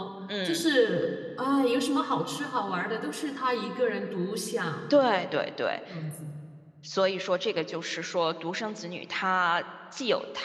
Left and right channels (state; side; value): identical; both; correlation 1.00